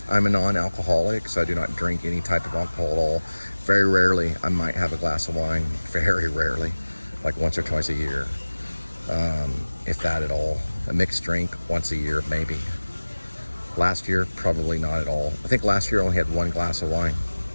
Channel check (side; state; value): both; inverted; correlation -1.00